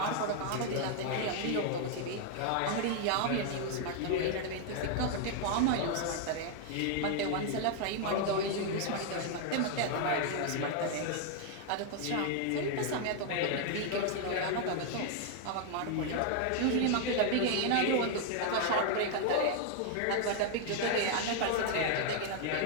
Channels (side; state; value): both; different; correlation 0.00